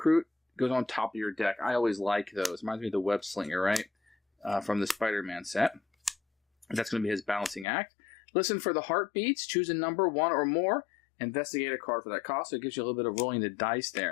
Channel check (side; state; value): right; drops out; at 7.7 s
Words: goes on top of your deck. I always like those. Reminds me of the Web Slinger, right? From the Spider-Man set. That's going to be his balancing act. Listen for the heartbeats. Choose a number, 1 or more. Investigate a card for that cost. So it gives you a little bit of rolling the dice